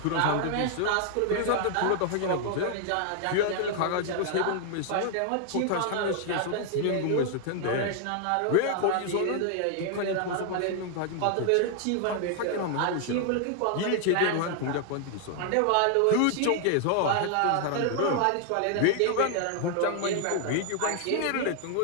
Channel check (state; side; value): different; both; correlation 0.00